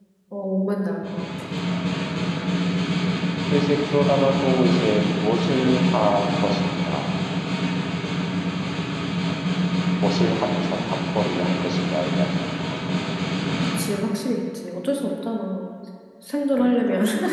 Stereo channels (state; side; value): identical; both; correlation 1.00